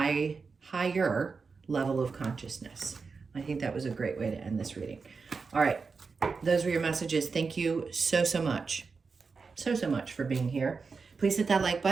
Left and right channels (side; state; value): left; quieter; 4.9 dB